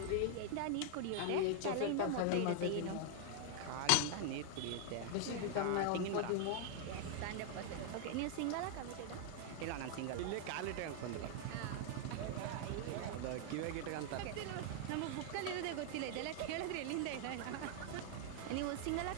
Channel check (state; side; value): different; both; correlation 0.00